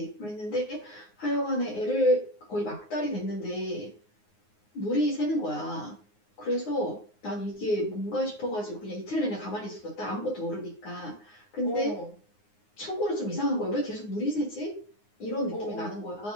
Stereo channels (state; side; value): late; right; 9.6 ms